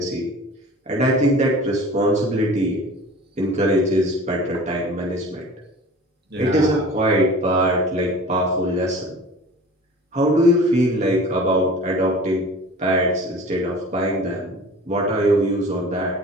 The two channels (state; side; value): normal; both; correlation 0.41